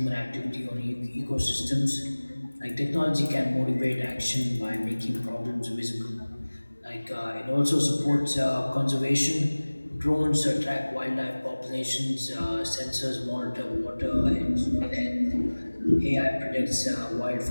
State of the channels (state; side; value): inverted; both; correlation -1.00